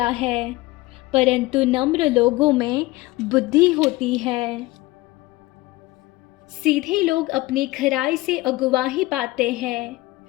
है, परंतु नम्र लोगों में बुद्धि होती है। सीधे लोग अपनी खराई से अगुवाही पाते हैं,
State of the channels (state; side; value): quieter; right; 19.9 dB